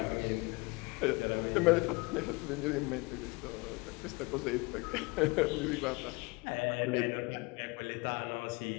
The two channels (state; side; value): quieter; right; 26.4 dB